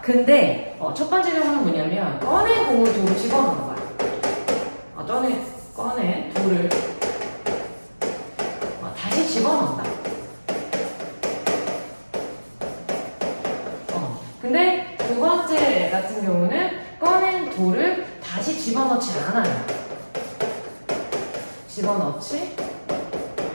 근데 첫 번째 경우는 뭐냐면, 꺼낸 공을 돌을 집어넣는 거야. 꺼낸 돌을 다시 집어넣는다. 근데 두 번째 같은 경우는 꺼낸 돌을 다시 집어넣지 않아요. 집어넣지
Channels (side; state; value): both; inverted; correlation -1.00